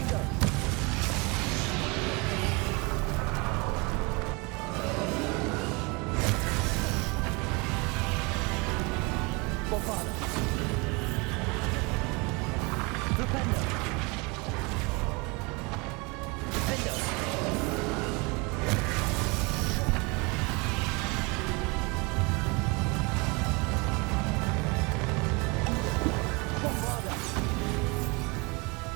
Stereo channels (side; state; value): left; quieter; 28.1 dB